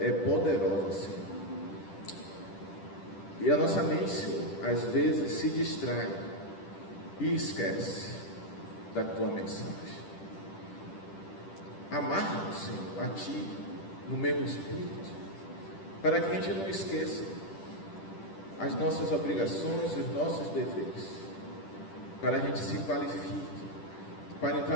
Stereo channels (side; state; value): right; late; 10 ms